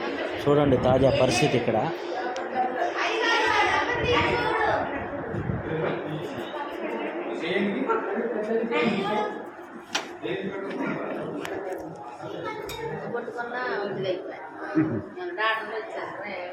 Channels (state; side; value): identical; both; correlation 1.00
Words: చూడండి తాజా పరిస్థితి ఇక్కడ.